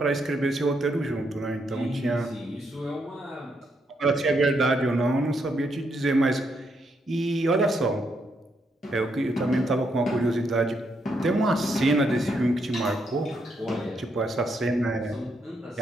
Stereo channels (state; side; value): normal; both; correlation 0.77